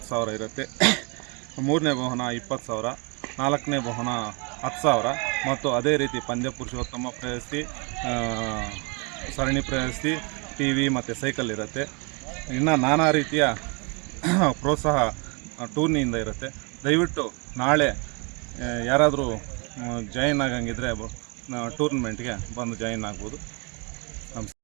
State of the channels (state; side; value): quieter; left; 31.9 dB